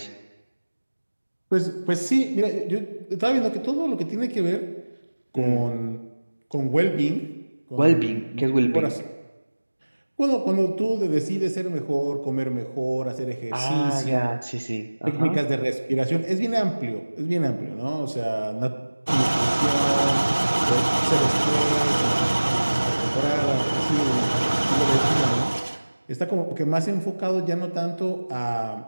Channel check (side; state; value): both; inverted; correlation -1.00